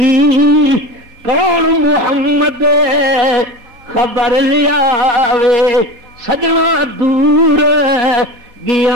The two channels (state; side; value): late; left; 3.9 ms